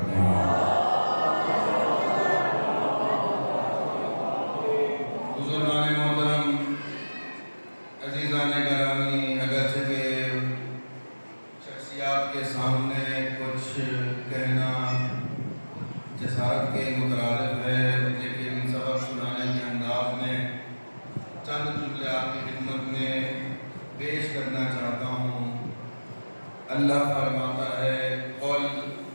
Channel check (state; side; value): inverted; both; correlation -1.00